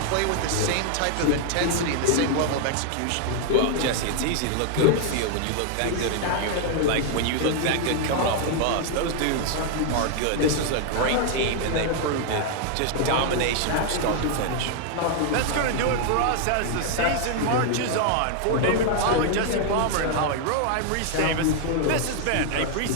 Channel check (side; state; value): both; different; correlation 0.00